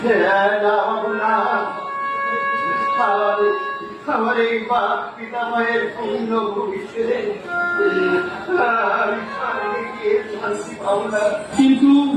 আমার এই বাপ পিতামহের পূর্ণ ভবিষ্যতে আমি স্বর্গে গিয়ে শান্তি পাবো না। কিন্তু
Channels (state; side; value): identical; both; correlation 1.00